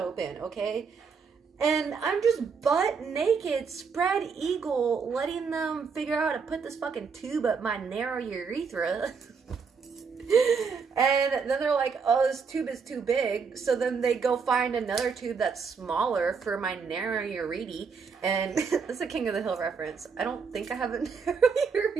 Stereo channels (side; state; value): left; quieter; 5.5 dB